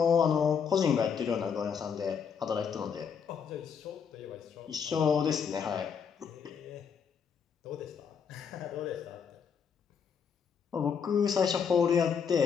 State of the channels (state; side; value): quieter; right; 6.7 dB